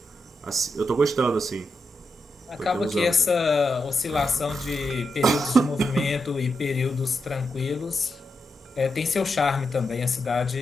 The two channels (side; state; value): both; normal; correlation 0.85